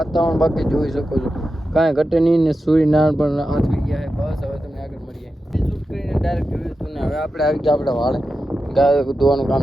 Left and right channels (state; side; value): normal; both; correlation 0.91